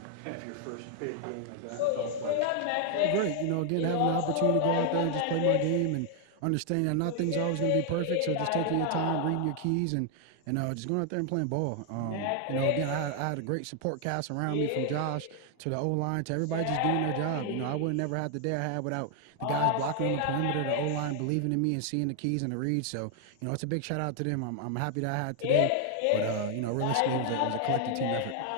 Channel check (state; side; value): different; both; correlation 0.00